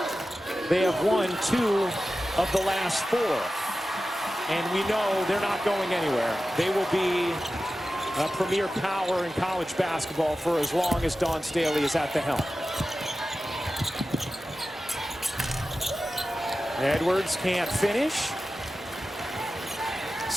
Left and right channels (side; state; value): both; normal; correlation 0.94